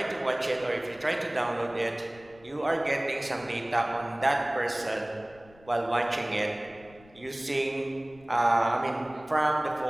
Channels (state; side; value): noise; left; rumble, 25 dB below the sound